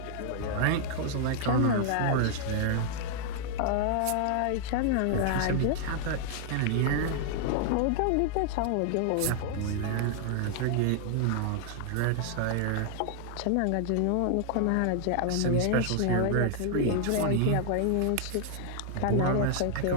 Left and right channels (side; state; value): both; different; correlation 0.00